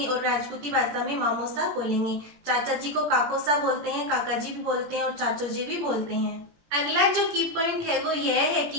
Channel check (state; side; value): late; left; 17 ms